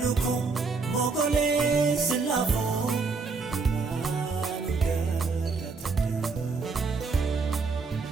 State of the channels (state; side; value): quieter; left; 4.4 dB